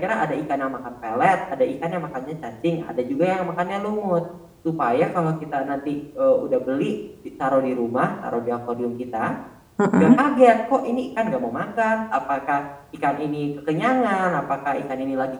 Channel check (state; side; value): identical; both; correlation 1.00